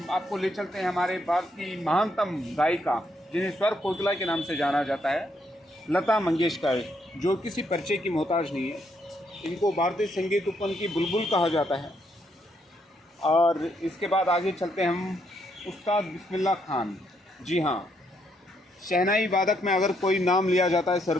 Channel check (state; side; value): normal; both; correlation 0.75